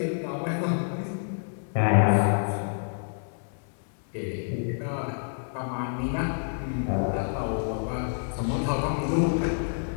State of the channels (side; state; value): right; silent; digital silence